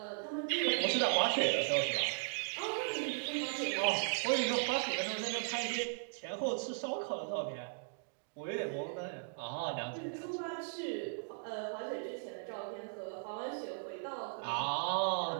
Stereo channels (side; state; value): left; silent; digital silence